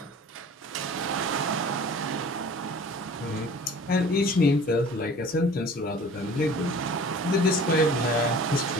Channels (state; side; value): normal; both; correlation 0.45